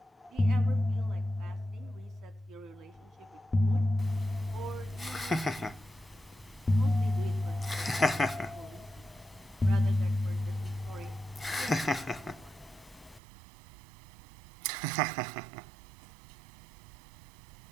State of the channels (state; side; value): drops out; left; at 13.2 s